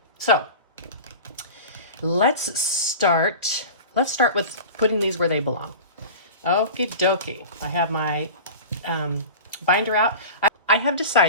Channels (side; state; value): both; inverted; correlation -0.34